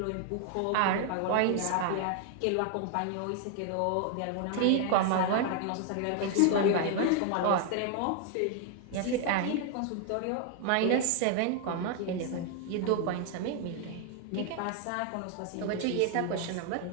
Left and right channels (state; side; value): different; both; correlation 0.00